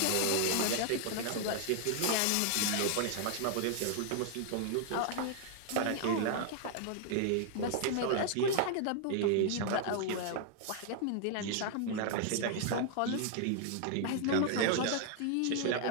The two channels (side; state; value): both; different; correlation 0.00